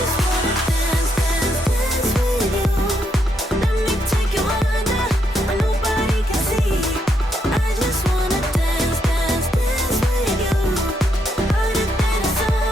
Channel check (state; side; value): normal; both; correlation 0.77